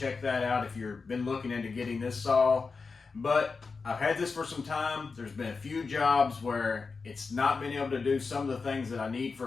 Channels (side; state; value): right; quieter; 4.6 dB